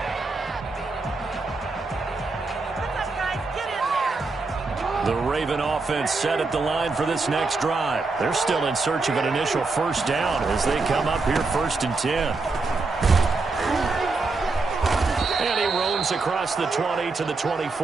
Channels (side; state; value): left; quieter; 3.8 dB